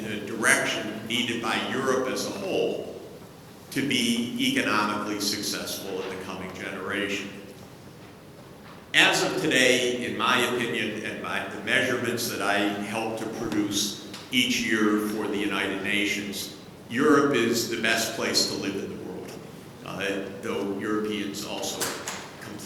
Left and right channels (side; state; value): both; identical; correlation 1.00